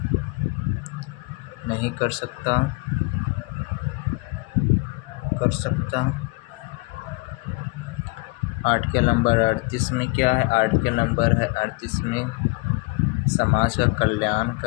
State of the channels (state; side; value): quieter; right; 26.4 dB